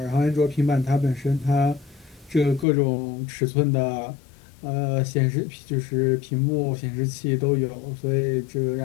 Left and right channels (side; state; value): right; drops out; at 2.7 s